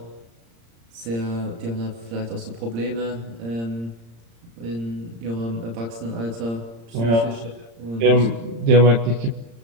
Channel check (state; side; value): late; left; 35 ms